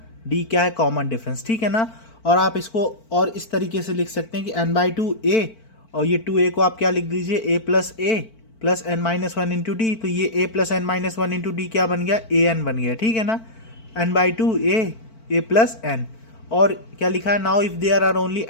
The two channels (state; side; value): late; right; 4.5 ms